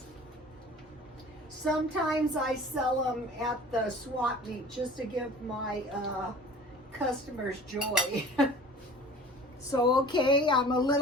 Sometimes I sell them at the swap meet just to give my customers joy. So okay, I'm a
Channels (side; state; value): both; normal; correlation 0.44